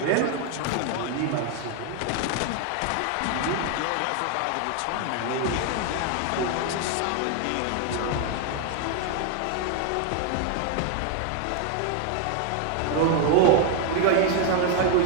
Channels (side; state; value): both; different; correlation 0.00